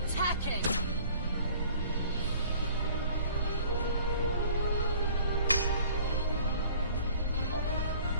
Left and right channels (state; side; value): inverted; both; correlation -0.50